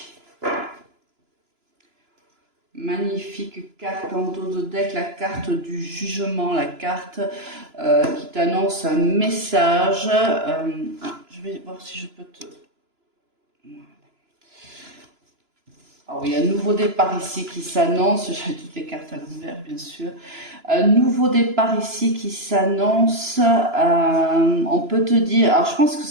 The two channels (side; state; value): left; late; 2.9 ms